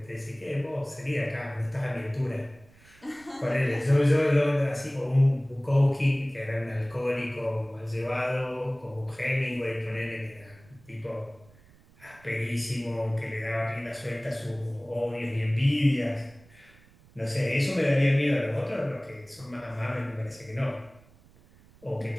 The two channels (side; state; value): right; noise; rumble, 26 dB below the sound